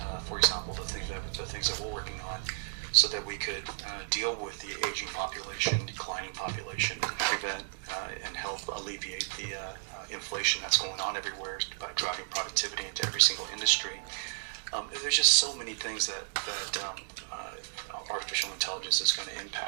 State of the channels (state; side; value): silent; left; digital silence